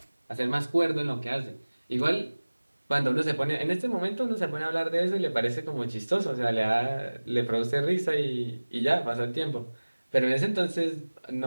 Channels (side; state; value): both; inverted; correlation -1.00